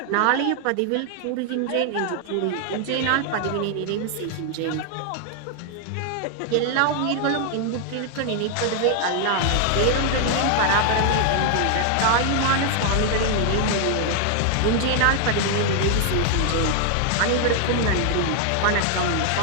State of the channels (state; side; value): different; both; correlation 0.00